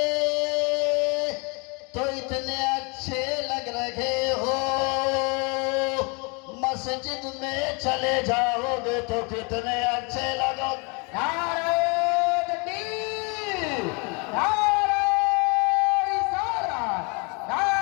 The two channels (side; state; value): right; quieter; 32.4 dB